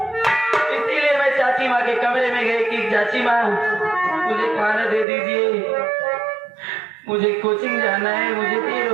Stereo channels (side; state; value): left; drops out; at 5.1 s